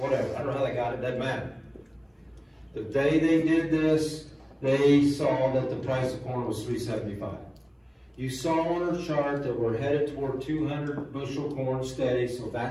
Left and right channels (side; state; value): both; identical; correlation 1.00